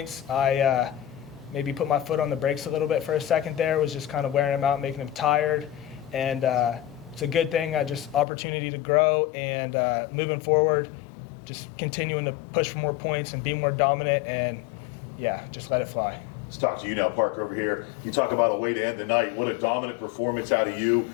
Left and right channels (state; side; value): drops out; right; at 8.2 s